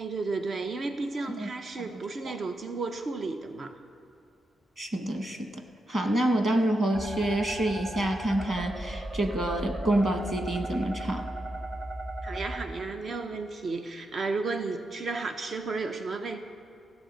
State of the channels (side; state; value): both; normal; correlation 0.85